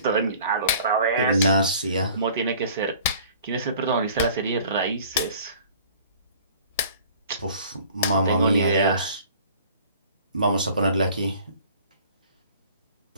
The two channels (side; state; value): both; inverted; correlation -0.50